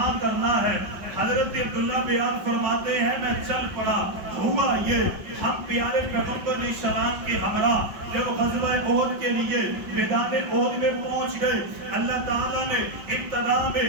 کرنا ہے۔ حضرت عبداللہ بیان فرماتے ہیں میں چل پڑا، ہوا یہ ہم پیارے پیغمبر علیہ السلام کے ہمراہ جب غزوہ احد کے لیے میدان احد میں پہنچ گئے، اللہ تعالیٰ نے ابتدا میں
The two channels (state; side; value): late; left; 5.5 ms